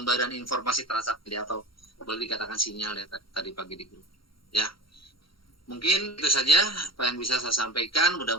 informasi transaksi atau boleh dikatakan sinyal ya tadi pagi di grup. Ya. Mungkin itu saja apa yang bisa saya sampaikan.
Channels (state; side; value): late; right; 0.74 ms